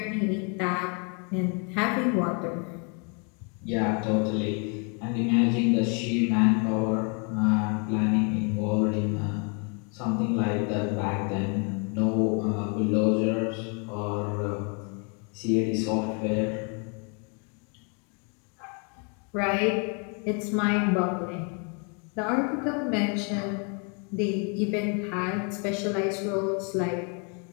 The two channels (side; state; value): right; quieter; 36.7 dB